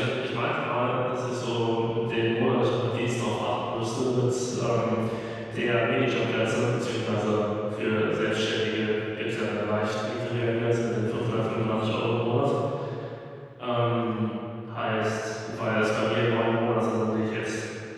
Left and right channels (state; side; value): identical; both; correlation 1.00